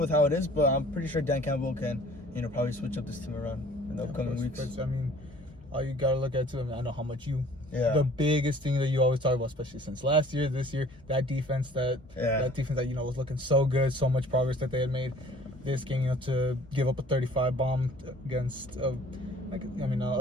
how it is, but I'm pretty sure Dan Campbell can probably switch up this team around in the upcoming weeks. But, all you gotta look at too. I know how much the biggest thing that you always talk about, especially since last year, this year, that defense that was looking so good, so much progress that they had made. This game, to give up a 35 bomb against a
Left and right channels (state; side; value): normal; both; correlation 0.52